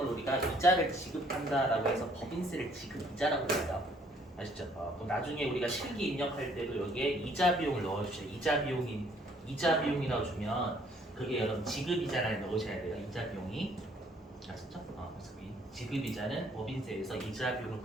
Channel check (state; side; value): normal; both; correlation 0.63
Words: 우리가 이자를 지급한다라고 해서 법인세를 지급이자라고 해요. 아시죠? 그럼 나중에 우리가 실기 입력할 때도 여기에 이자 비용을 넣어주셔요. 이자 비용이라고 주면 그게 여러분 지급이자를 넣으셔야 돼요. 이자 비용이 아셨죠? 그래서 이 지급이자는 법인세에서 이자 비용을